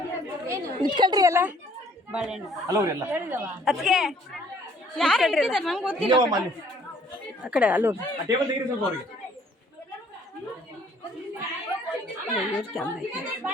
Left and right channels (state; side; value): normal; both; correlation 0.60